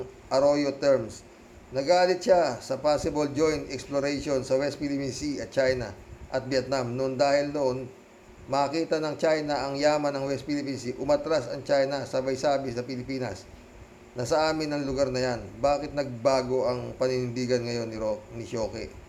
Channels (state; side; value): identical; both; correlation 1.00